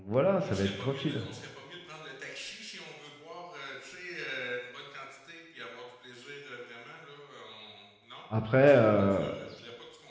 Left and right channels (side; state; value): both; identical; correlation 1.00